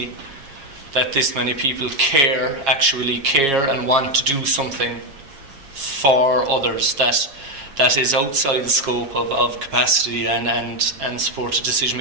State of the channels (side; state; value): left; late; 7.3 ms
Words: that this many people actually care and want to do something for others that is outside the scope of capacity and supported decision